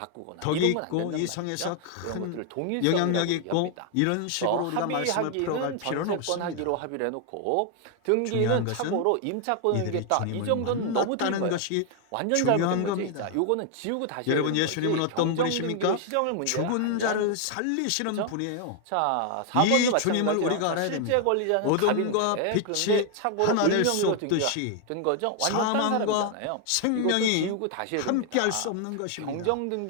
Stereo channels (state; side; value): different; both; correlation 0.00